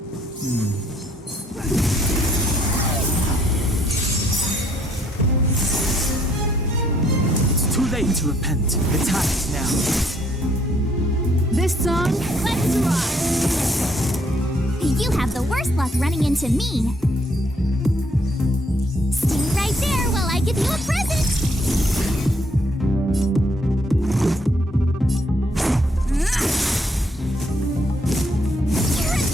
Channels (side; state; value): both; normal; correlation 0.68